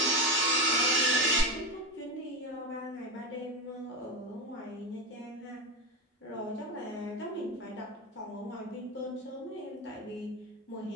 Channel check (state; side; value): normal; both; correlation 0.16